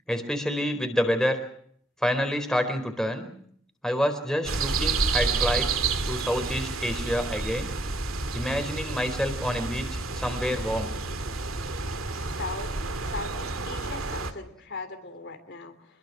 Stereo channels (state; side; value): normal; both; correlation 0.69